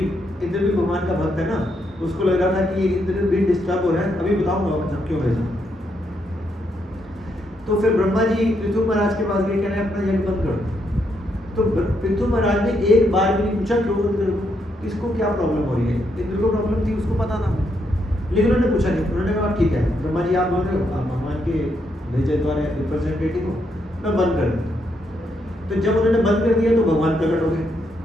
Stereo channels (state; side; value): normal; both; correlation 0.78